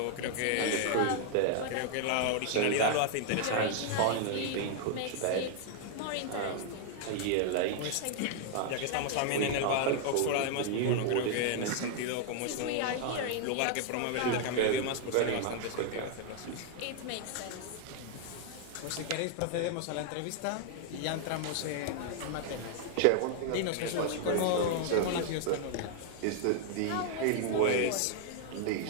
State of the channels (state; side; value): different; both; correlation 0.00